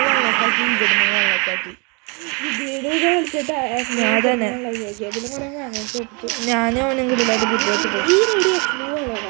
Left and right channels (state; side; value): quieter; left; 32.2 dB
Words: വെള്ളക്കാക്കി. ഞാനും അവനും കൂടി അത് ബുദ്ധിമുട്ട്.